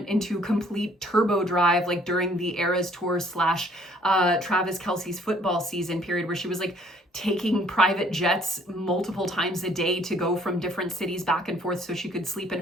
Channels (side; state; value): both; normal; correlation 0.60